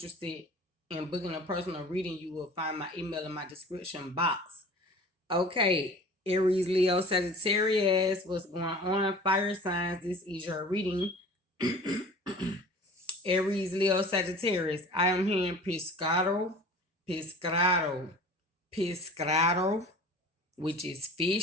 in booking a personal reading, you will find my email in my description box. Okay, Aries, Leo, Sagittarius, what's going on? Fire signs, this is your reading. Aries, Leo, Sagittarius. I am hearing pescado, which is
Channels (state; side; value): normal; both; correlation 0.42